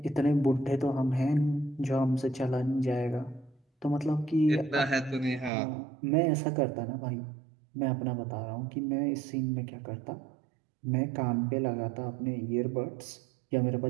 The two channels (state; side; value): drops out; left; at 5.5 s